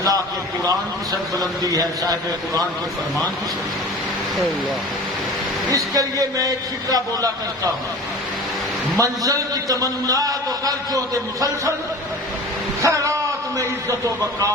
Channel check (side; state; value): both; normal; correlation 0.38